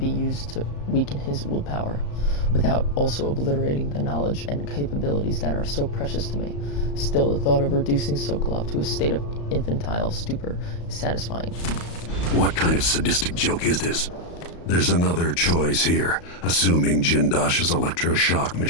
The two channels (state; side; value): late; right; 35 ms